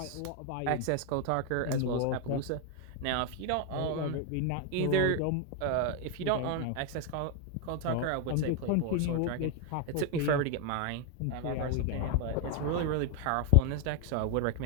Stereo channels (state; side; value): different; both; correlation 0.01